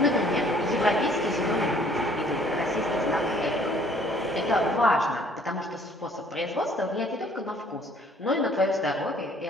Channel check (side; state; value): both; normal; correlation 0.58